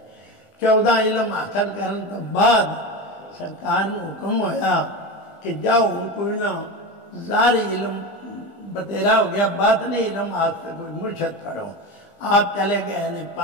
14 इलम हासिल करने तो बाद सरकार ने हुक्म होया कि जाओ कोई ना ज़ारी इलम बतेरा हो गया, बातनी इलम हासिल कोई मुर्शद पढ़ो। आप चले गए ने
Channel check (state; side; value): late; right; 20 ms